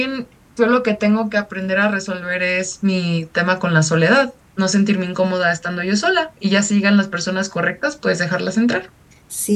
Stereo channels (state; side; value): identical; both; correlation 1.00